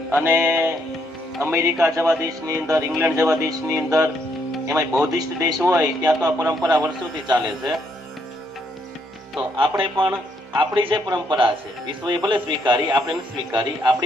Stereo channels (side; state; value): both; normal; correlation 0.73